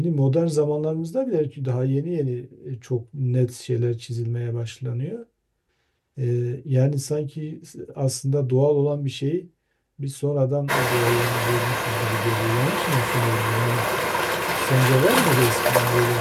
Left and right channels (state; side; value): identical; both; correlation 1.00